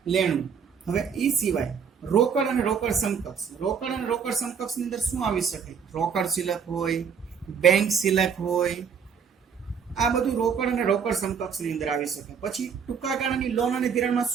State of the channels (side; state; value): left; quieter; 6.8 dB